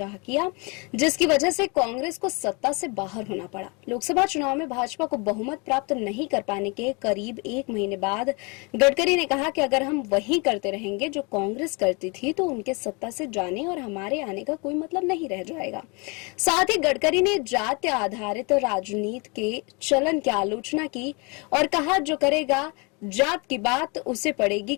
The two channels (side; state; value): right; quieter; 30.6 dB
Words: किया, जिसकी वजह से कांग्रेस को सत्ता से बाहर होना पड़ा। लोकसभा चुनाव में भाजपा को बहुमत प्राप्त नहीं कर पाने के करीब एक महीने बाद गडकरी ने कहा कि अगर हम वही करते रहेंगे जो कांग्रेस करती थी तो उनके सत्ता से जाने और हमारे आने का कोई मतलब नहीं रह जाएगा। साथ ही गडकरी ने जाति आधारित राजनीति के चलन की आलोचना की और कहा, जो करेगा जात की बात उसे पड़ेगी